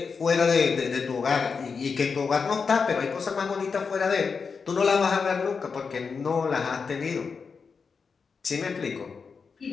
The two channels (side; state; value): right; quieter; 5.4 dB